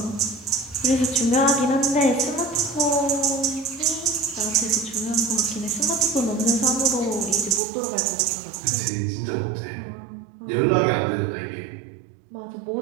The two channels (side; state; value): left; drops out; at 7.6 s